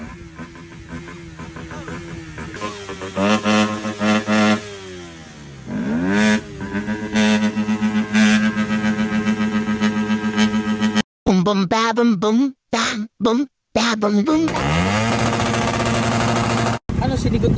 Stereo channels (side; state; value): both; identical; correlation 1.00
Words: Boom boom ba boom boom bam boom ba boom boom. Ano, sinigot